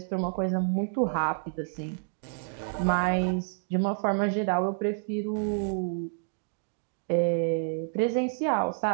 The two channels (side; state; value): left; silent; digital silence